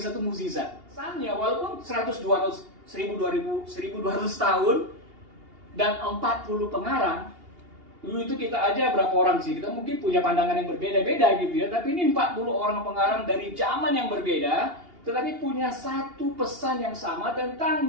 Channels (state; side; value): late; left; 2.8 ms